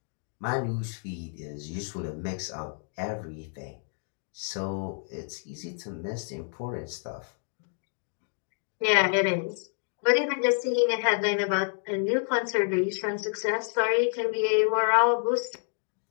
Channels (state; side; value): silent; right; 59 dB below the other